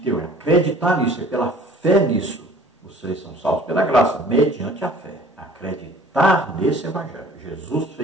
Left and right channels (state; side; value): normal; both; correlation 0.50